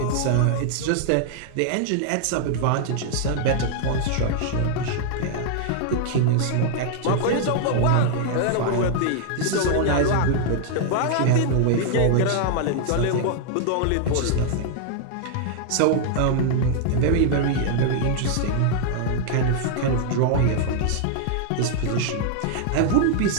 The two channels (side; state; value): both; different; correlation 0.00